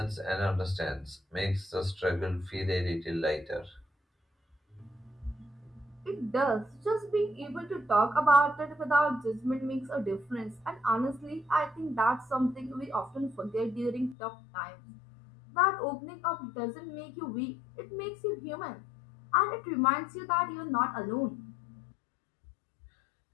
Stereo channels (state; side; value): drops out; right; at 14.2 s